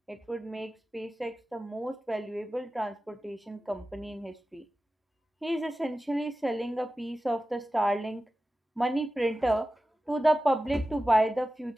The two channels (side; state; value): both; normal; correlation 0.94